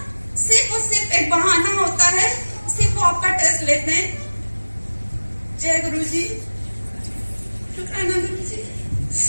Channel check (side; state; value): both; inverted; correlation -1.00